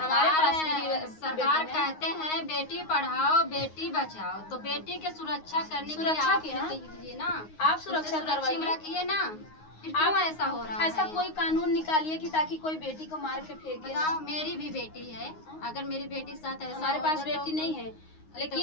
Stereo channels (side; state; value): right; late; 9.6 ms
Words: पास सरकार कहते हैं बेटी पढ़ाओ बेटी बचाओ, तो बेटी के सुरक्षा करने के लिए सुरक्षा आप क्या? दीजिए ना, आप सुरक्षा सुरक्षा में रखिए ना। फिर क्यों ऐसा हो रहा है? ऐसा कोई कानून निकालिए कि ताकि कोई बेटी को मार के फेंके। बताओ, मेरी भी बेटी है, अगर मेरी बेटी के साथ ऐसा हमारे पास होगा बेटी नहीं है,